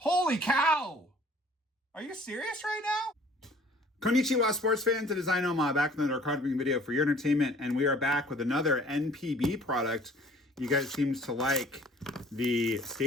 cow! Are you serious right now? Konnichiwa, sports fans. It is NOMAH back with another card opening video for your entertainment, and we are back with another NPB product. You guys seem to like the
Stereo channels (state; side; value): normal; both; correlation 0.53